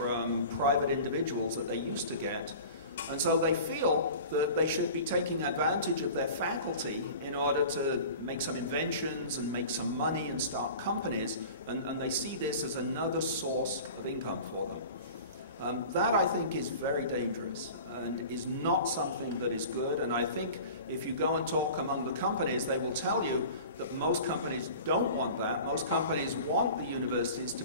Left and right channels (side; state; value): both; inverted; correlation -0.39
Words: private individuals that they used to get. And so they feel that they should be taking advantage of their faculty in order to make some inventions and make some money and start companies, and they see this as another source of income for them. That, I think, is very dangerous and is not something that is good. And I think if you go and talk among the companies, they will tell you that most companies don't want that. Most companies want the universities to